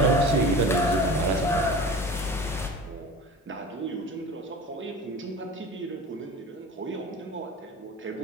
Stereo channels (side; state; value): both; normal; correlation 0.36